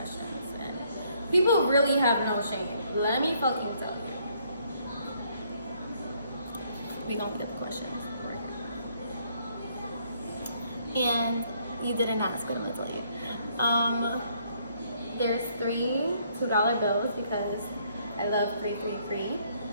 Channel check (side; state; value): both; inverted; correlation -0.68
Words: and people really have no shame. Let me fucking tell you. We gonna get the questions right here. And you didn't ask, but I'm gonna tell you. There's 3 $2 bills because I love 333.